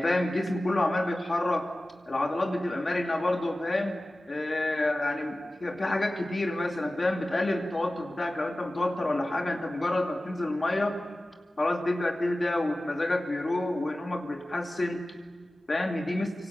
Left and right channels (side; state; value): both; normal; correlation 0.96